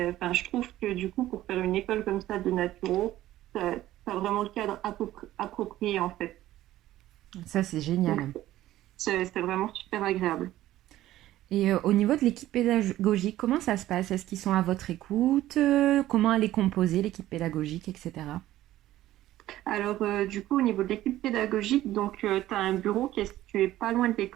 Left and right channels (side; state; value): left; quieter; 14.6 dB